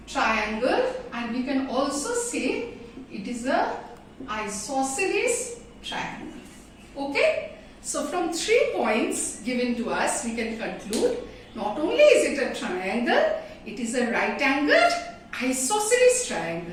triangle, and we can also say it is a isosceles triangle. Okay? So from 3 points given to us, we can conclude not only is it a triangle, it is a right angled isosceles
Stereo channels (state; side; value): identical; both; correlation 1.00